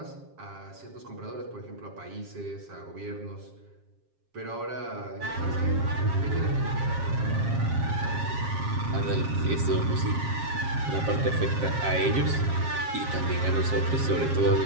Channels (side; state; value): left; late; 7.4 ms